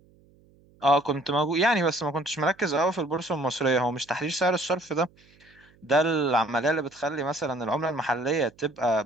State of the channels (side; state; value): right; noise; hum, 30 dB below the sound